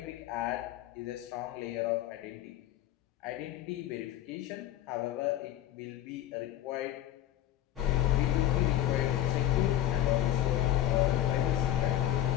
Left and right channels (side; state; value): right; quieter; 12.8 dB